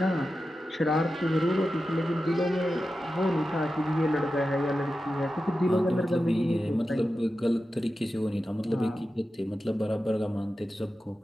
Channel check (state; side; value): normal; both; correlation 0.92